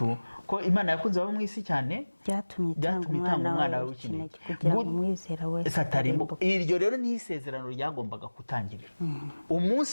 ko Imana yakunze abo mu isi cyane byatumye itanga umwana w'ikinege kugira ngo umwizera wese atarimbuka. Iryo rero ni isezerano ryagombaga gutangirira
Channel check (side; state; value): both; inverted; correlation -1.00